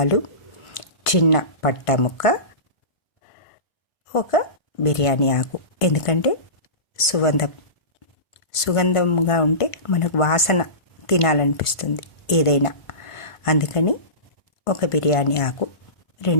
చిన్న పట్టా ముక్క, ఒక బిర్యానీ ఆకు. ఎందుకంటే సుగంధంగా ఉంటే మనకు వాసన తినాలనిపిస్తుంది ఏదైనా, అందుకని ఒక బిర్యానీ ఆకు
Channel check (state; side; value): late; right; 1.5 ms